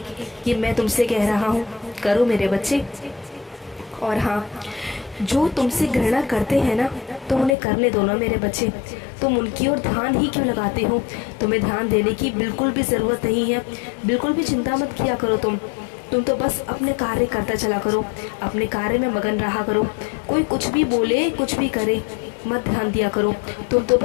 ये मैं तुमसे कह रहा हूँ, करो मेरे बच्चे। और हाँ, जो तुमसे घृणा करते हैं ना, तो उन्हें करने दो ना मेरे बच्चे। तुम उनकी ओर ध्यान ही क्यों लगाते हो? तुम्हें ध्यान देने की बिल्कुल भी ज़रूरत नहीं है, बिल्कुल भी चिंता मत किया करो तुम तो बस अपने कार्य करता चला करो, अपने कार्य में मगन रहा करो। कोई कुछ भी बोले, कुछ भी करे, मत ध्यान दिया करो। तुम तो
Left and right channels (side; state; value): right; drops out; at 7.6 s